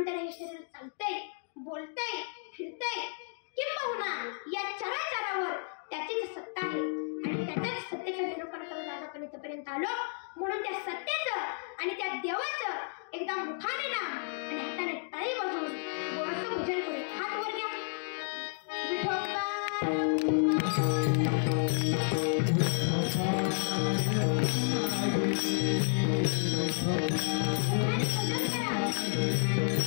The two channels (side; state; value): right; silent; digital silence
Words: त्याला हे शरीर चालतंय, बोलतंय, फिरतंय. किंबहुना या चराचरावर त्याचीच सत्ता आहे आणि त्याच्याच सत्तेचा निरूपण करून आज आपण इथपर्यंत आलो. म्हणून त्या सत्तेचं आणि त्या देवाचं एकदा मुखाने नाम आणि हाताने टाळी वाजवून गोडसं भजन करू. हात वर घ्या.